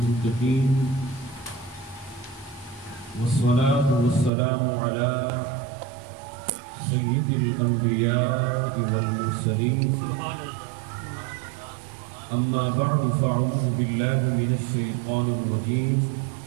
والصلاة والسلام على سيد الأنبياء والمرسلين أما بعد فأعوذ بالله من الشيطان الرجيم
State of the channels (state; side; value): drops out; left; at 4.3 s